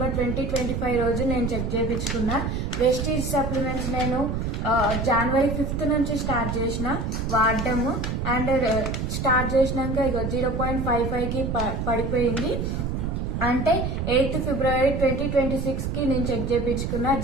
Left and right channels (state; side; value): noise; right; rumble, 2 dB below the sound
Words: 2025 రోజు నేను చెక్ చేయించుకున్నా. వెస్టీజ్ సప్లిమెంట్స్ నేను January 5th నుంచి స్టార్ట్ చేసిన వాడడము. అండ్ స్టార్ట్ చేసినాక ఇక 0.55 కి పడిపోయింది. అంటే 8th February 2026 కి నేను చెక్ చేయించుకున్నా.